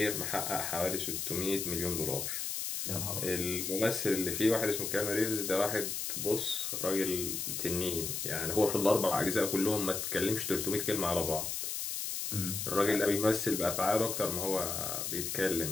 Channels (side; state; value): left; noise; hiss, 3 dB below the sound